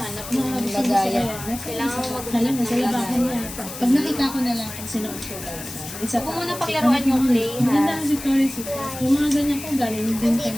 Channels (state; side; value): noise; left; hiss, 11 dB below the sound